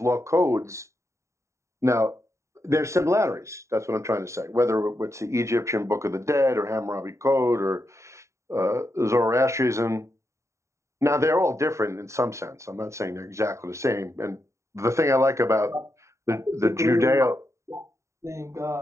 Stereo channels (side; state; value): left; late; 0.14 ms